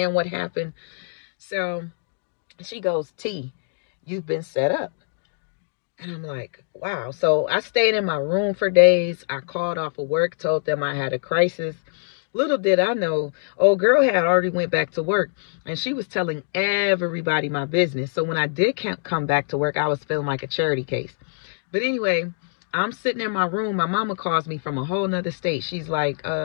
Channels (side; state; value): right; silent; digital silence